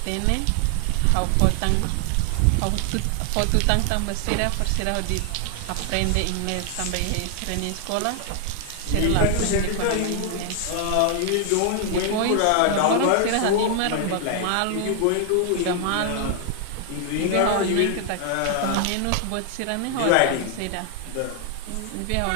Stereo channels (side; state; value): both; different; correlation 0.00